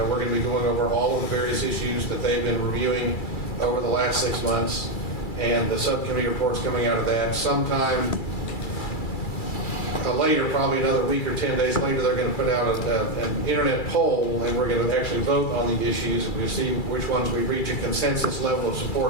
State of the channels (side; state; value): right; late; 2.3 ms